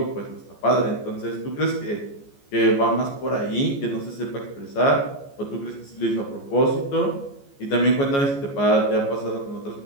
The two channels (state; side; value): late; right; 14 ms